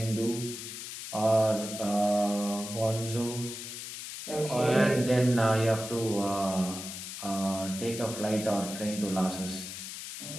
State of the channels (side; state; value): left; noise; hiss, 9 dB below the sound